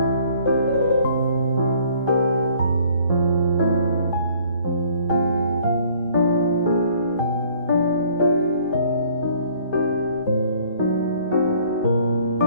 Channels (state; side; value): inverted; both; correlation -0.58